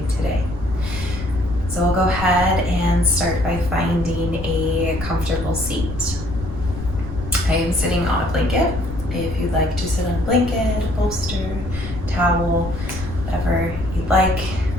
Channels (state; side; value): noise; left; rumble, 10 dB below the sound